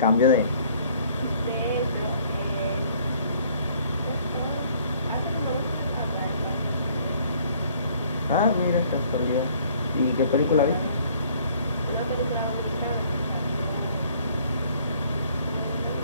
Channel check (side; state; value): both; inverted; correlation -0.59